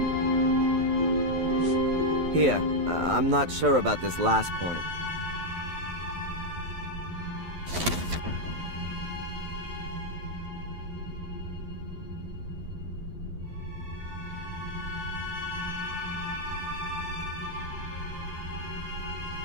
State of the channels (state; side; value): late; left; 11 ms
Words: Here, I'm not sure about this last point.